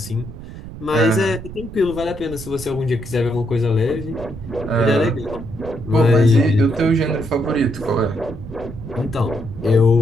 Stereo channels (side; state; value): right; noise; rumble, 13 dB below the sound